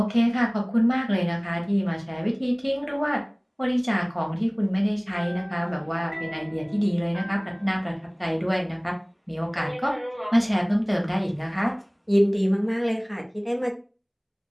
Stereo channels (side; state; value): both; identical; correlation 1.00